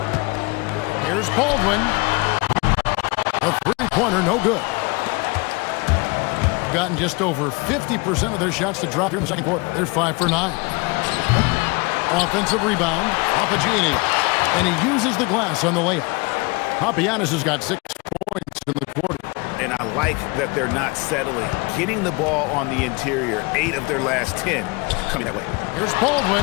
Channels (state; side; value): quieter; right; 27.5 dB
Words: Here's Baldwin. A 3-pointer, no good. Gotten just over 50% of their shots to drop here in the second quarter. They're 5 for 9. Offensive rebound, Papagiannis, and he uses the glass on the layup. Papagiannis has got 6 points in the quarter. And I like that they're not settling. Getting the ball on the interior, 8 of their last 10 coming that way. Here's